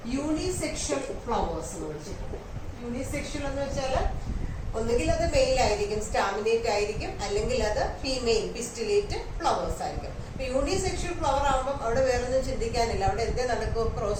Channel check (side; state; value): both; identical; correlation 1.00